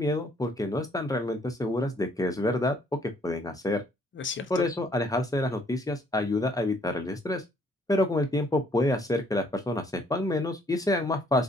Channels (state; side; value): normal; both; correlation 0.64